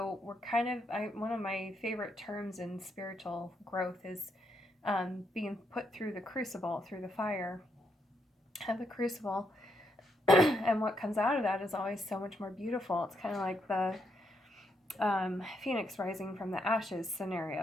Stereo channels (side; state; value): both; normal; correlation 0.78